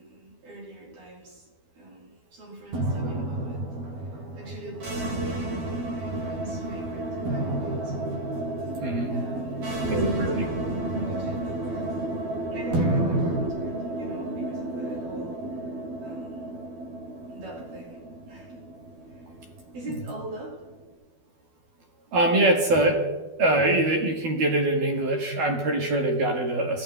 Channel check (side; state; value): left; late; 12 ms